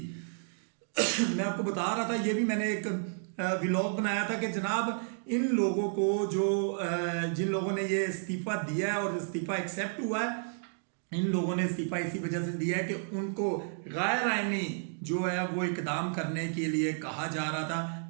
मैं आपको बता रहा था, ये भी मैंने एक व्लॉग बनाया था कि जनाब इन लोगों को जो जिन लोगों ने ये इस्तीफा दिया है और इस्तीफा एक्सेप्ट हुआ है, इन लोगों ने इस्तीफा इसी वजह से दिया है कि उनको गैर आईनी जो है वो इकदाम करने के लिए कहा जा रहा था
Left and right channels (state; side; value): silent; left; digital silence